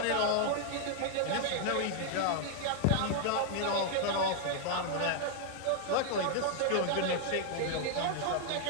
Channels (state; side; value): different; both; correlation 0.00